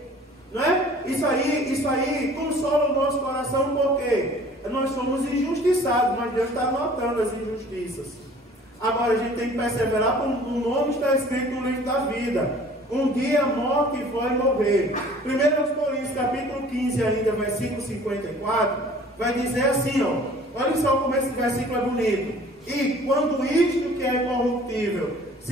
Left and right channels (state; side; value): normal; both; correlation 0.50